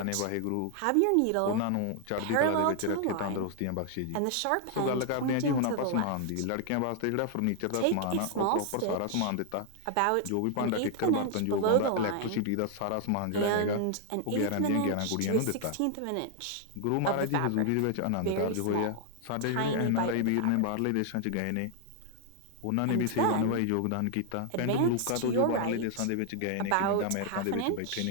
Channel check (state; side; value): different; both; correlation 0.00